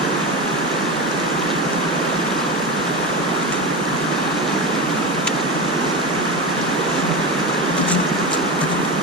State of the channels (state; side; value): normal; both; correlation 0.20